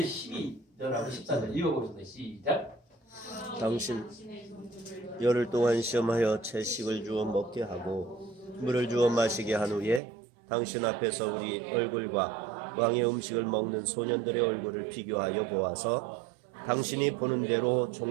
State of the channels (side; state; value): left; drops out; at 10.0 s